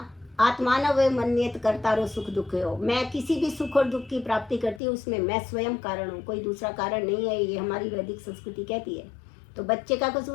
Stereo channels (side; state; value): right; drops out; at 4.8 s